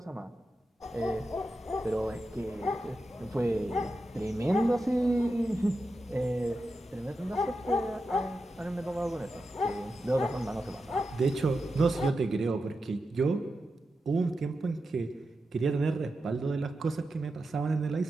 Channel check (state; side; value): normal; both; correlation 0.89